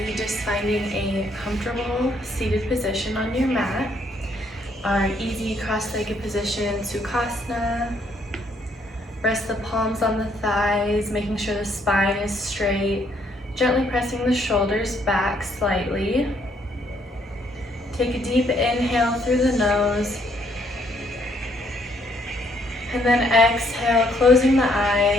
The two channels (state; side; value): normal; both; correlation 0.69